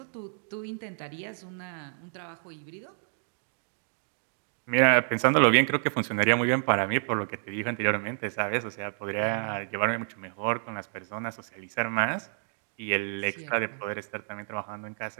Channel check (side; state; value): left; silent; 58 dB below the other